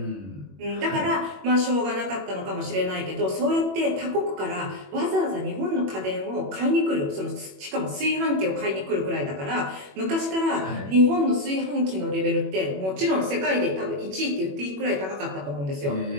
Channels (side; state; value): left; late; 21 ms